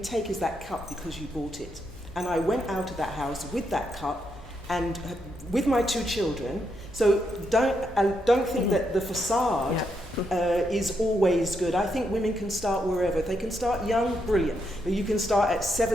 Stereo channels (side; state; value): both; normal; correlation 0.80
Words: take is that cup because you bought it. And I went out of that house with that cup and with my 2 children. So don't think that the facade is always good. I think women can start wherever. If they can start young, brilliant. But you can start at